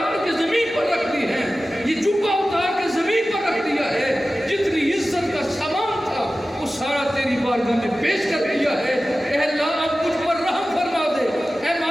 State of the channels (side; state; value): both; normal; correlation 0.95